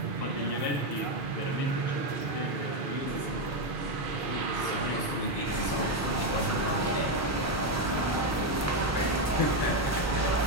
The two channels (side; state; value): both; normal; correlation 0.06